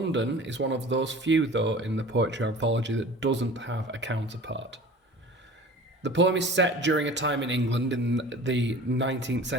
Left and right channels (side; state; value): both; normal; correlation 0.41